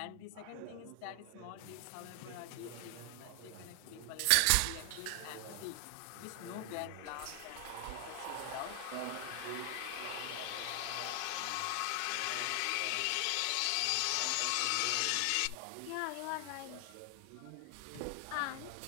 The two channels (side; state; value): both; different; correlation 0.00